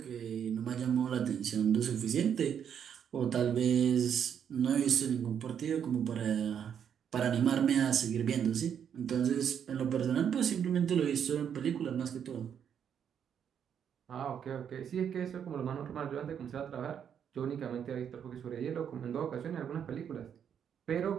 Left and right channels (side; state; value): left; quieter; 8.3 dB